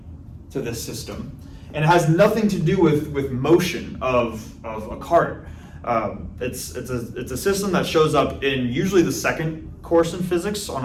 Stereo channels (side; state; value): both; identical; correlation 1.00